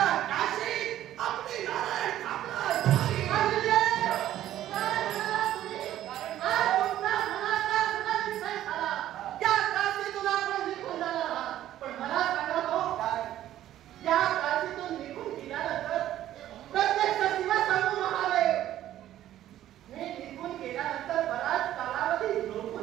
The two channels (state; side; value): quieter; left; 12.7 dB